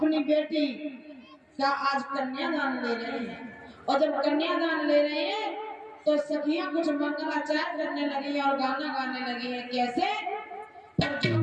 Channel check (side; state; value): both; identical; correlation 1.00